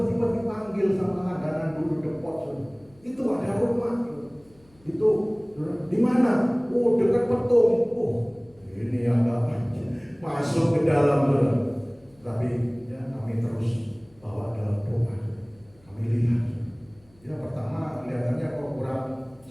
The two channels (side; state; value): left; noise; hum, 30 dB below the sound